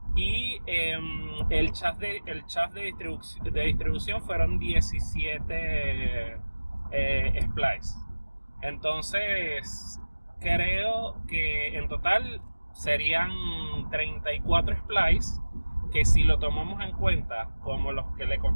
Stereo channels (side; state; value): both; inverted; correlation -1.00